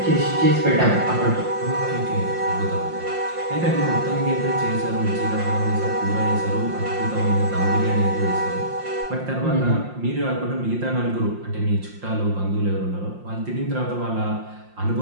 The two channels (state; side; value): late; left; 5.7 ms